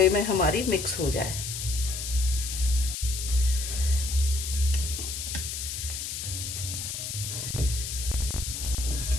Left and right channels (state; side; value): noise; left; hiss, 5 dB below the sound